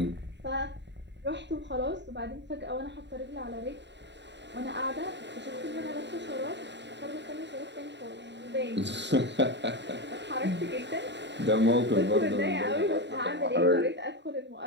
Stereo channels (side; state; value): left; late; 0.52 ms